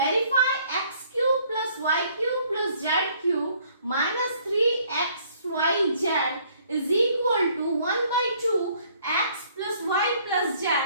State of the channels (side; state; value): both; inverted; correlation -0.61